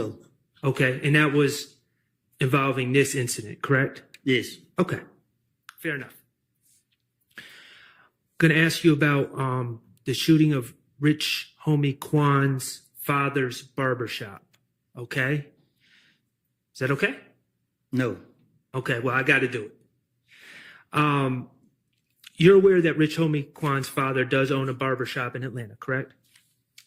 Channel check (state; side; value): identical; both; correlation 1.00